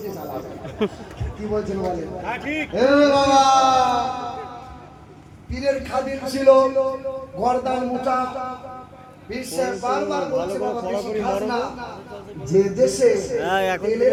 চালাবে। কি বলছেন বলেন? এ বাবা, পীরের খাদিম ছিল, গর্দান মোটা। পীর সাহেব বারবার বলছে, বাবা বেশি খাস না। যে দেশে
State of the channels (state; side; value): identical; both; correlation 1.00